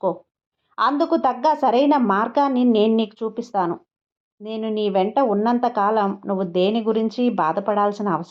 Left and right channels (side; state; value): both; identical; correlation 1.00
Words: అందుకు తగ్గ సరైన మార్గాన్ని నేను నీకు చూపిస్తాను. నేను నీ వెంట ఉన్నంతకాలం నువ్వు దేని గురించి బాధపడాల్సిన